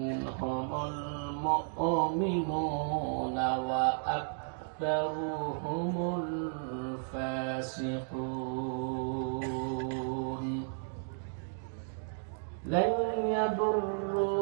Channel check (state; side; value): silent; left; digital silence